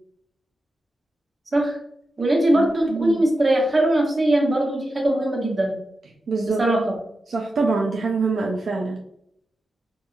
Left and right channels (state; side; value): normal; both; correlation 0.90